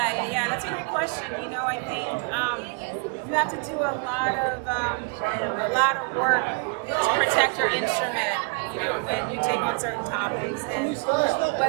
that's a great question. I think you have to do a lot of work to protect your instrument. When you take on certain topics, and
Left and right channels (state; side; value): quieter; left; 33.7 dB